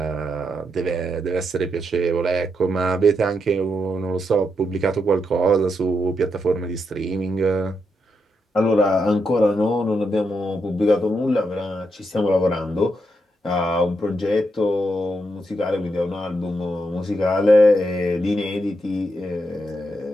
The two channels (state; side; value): normal; both; correlation 0.82